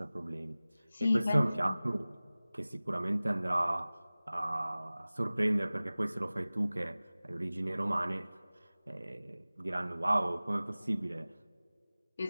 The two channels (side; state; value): both; inverted; correlation -0.98